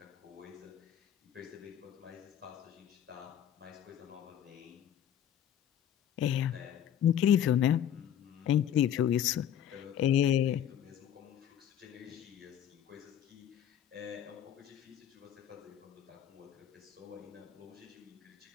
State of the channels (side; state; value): right; quieter; 10.1 dB